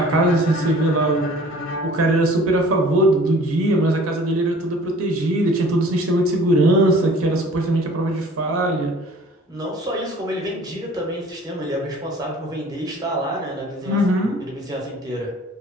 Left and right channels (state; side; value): normal; both; correlation 0.49